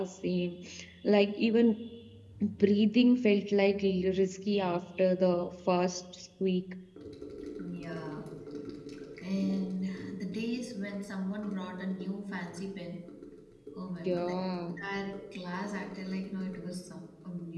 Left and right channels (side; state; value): both; identical; correlation 1.00